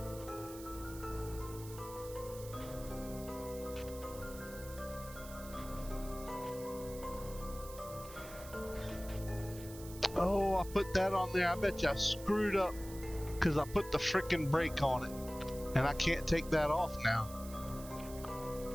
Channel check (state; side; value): noise; right; hiss, 15 dB below the sound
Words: Oh, I put that on there. I bet you I screwed up because I put the frickin' brake on it. And I can't take that off now.